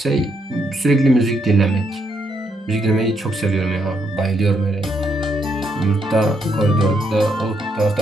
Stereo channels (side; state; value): both; normal; correlation 0.76